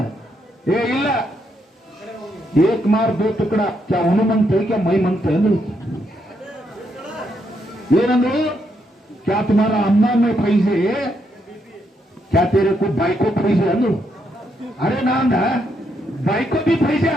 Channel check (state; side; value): normal; both; correlation 0.78